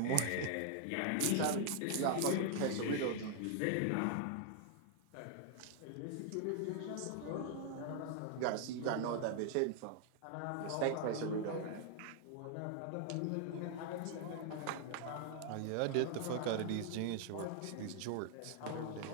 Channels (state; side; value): different; both; correlation 0.00